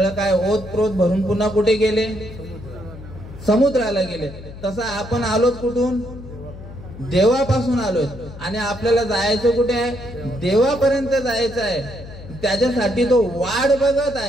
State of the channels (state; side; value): noise; left; hum, 14 dB below the sound